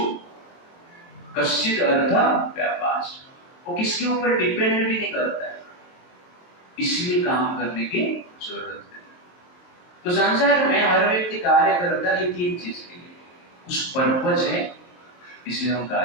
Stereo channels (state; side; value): late; right; 23 ms